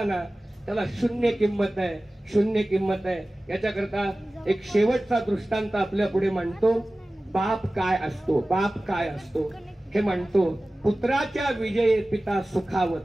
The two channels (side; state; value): both; normal; correlation 0.97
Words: ना, त्याला शून्य किंमत आहे, शून्य किंमत आहे. याच्याकरता एक शेवटचा दृष्टांत आपल्या पुढे मांडतो. बाप काय असतो, बाप काय असतो हे म्हणतो. पुत्राच्या विजयी पिता